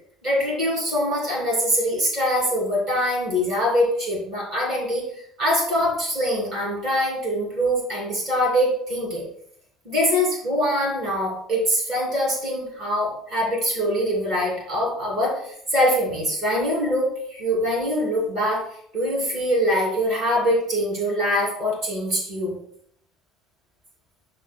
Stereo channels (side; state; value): both; normal; correlation 0.42